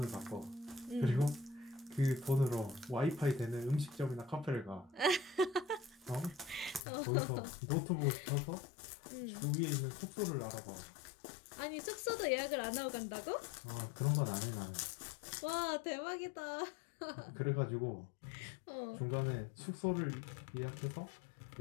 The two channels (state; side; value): drops out; right; at 6.8 s